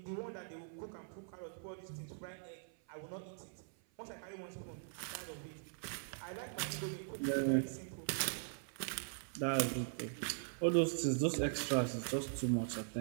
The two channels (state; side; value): silent; left; 50 dB below the other